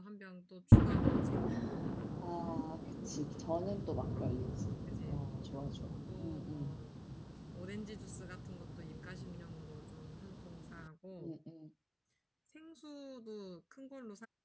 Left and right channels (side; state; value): both; identical; correlation 1.00